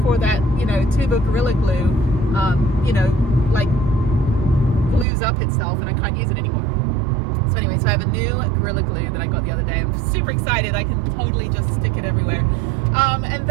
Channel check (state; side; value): drops out; left; at 5.1 s